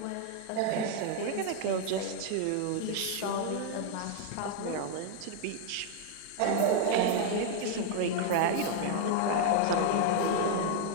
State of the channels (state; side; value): different; both; correlation 0.00